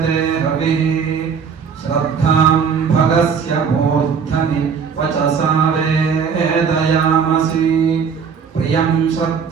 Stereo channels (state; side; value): quieter; left; 6.3 dB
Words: हविः श्रद्धां भगस्य मूर्धनि वचसा वेदयामसि। प्रियं